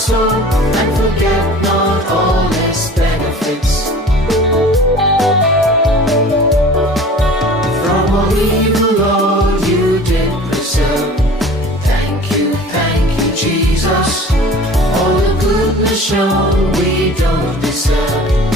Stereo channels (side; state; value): both; normal; correlation 0.43